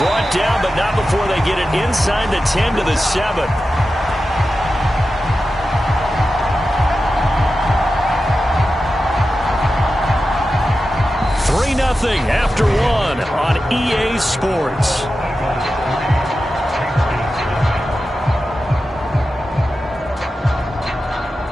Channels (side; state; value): both; normal; correlation 0.92